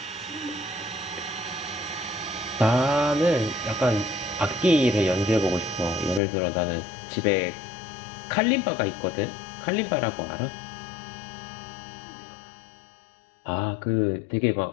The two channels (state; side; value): drops out; right; at 6.2 s